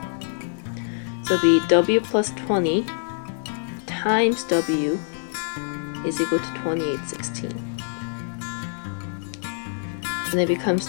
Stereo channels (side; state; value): right; silent; 62 dB below the other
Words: So it'll be W plus 20 times W is equal to 2816. And it becomes